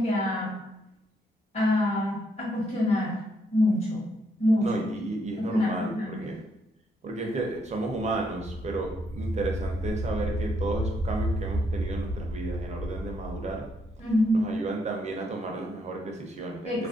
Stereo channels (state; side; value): normal; both; correlation 0.75